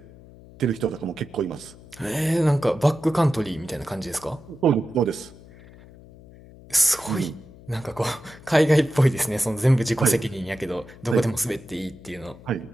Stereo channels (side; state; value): left; noise; hum, 21 dB below the sound